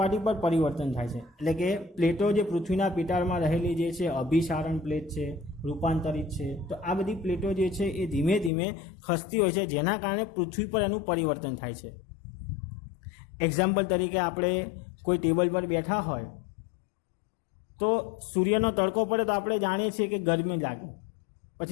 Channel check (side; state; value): right; drops out; at 8.5 s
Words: પર પરિવર્તન થાય છે. એટલે કે પ્લેટો જે પૃથ્વીના પેટાળમાં રહેલી જે છે અભિસારણ પ્લેટ છે, રૂપાંતરિત છે, તો આ બધી પ્લેટો જે છે એ ધીમે ધીમે ખસતી હોય છે, જેના કારણે પૃથ્વી પર એનું પરિવર્તન થાય છે. એક્ઝામ્પલ તરીકે આપણે કોઈ ટેબલ પર બેઠા હોય તો સૂર્યનો તડકો પડે તો આપણે જાણીએ છીએ કે ગરમી લાગે,